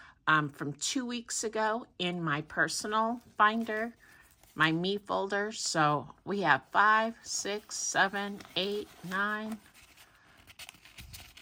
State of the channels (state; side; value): identical; both; correlation 1.00